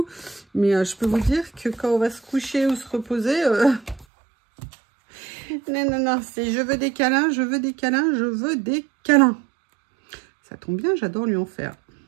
Mais je peux vous dire que quand on va se coucher ou se reposer... Non, non, non, c'est je veux des câlins, je veux des câlins, je veux des câlins. Ça tombe bien, j'adore lui en faire.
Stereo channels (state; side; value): drops out; left; at 4.0 s